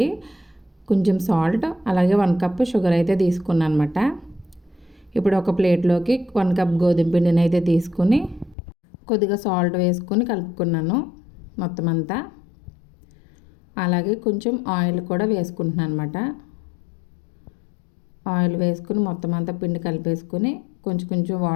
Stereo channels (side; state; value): right; drops out; at 8.6 s